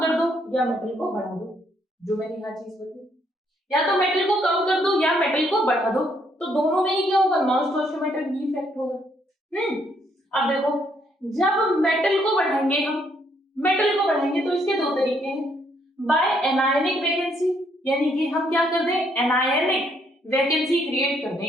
दो या मेटल को बढ़ा दो, जो मैंने यहाँ चीज बताई, या तो मेटल को कम कर दो या मेटल को बढ़ा दो। तो दोनों में ही क्या होगा, नॉन स्टोशियोमेट्रिक डिफेक्ट होगा। अब देखो, जब मेटल को बढ़ाएंगे हम, मेटल को बढ़ाएंगे तो इसके दो तरीके हैं, बाय एनायनिक वैकेंसी, यानी कि हम क्या कर दें, एनायनिक वैकेंसी क्रिएट कर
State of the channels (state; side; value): normal; both; correlation 0.71